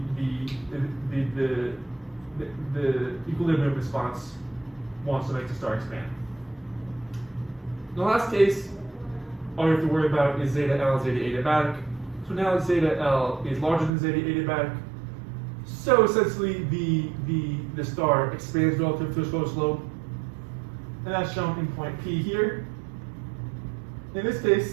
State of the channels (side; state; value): left; drops out; at 13.9 s